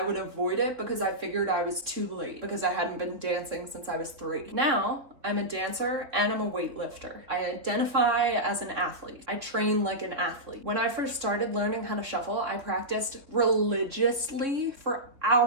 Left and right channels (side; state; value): left; late; 3.6 ms